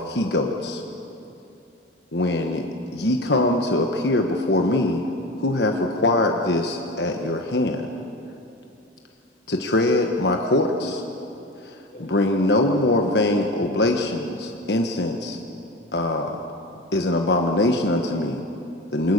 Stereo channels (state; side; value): normal; both; correlation 0.29